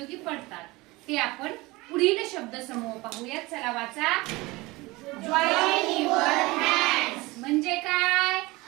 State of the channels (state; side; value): quieter; left; 22.1 dB